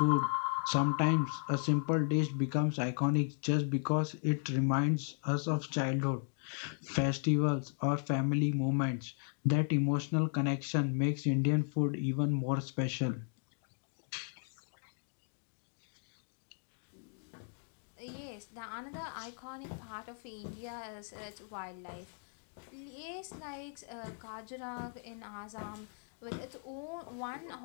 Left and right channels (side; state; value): right; silent; 54 dB below the other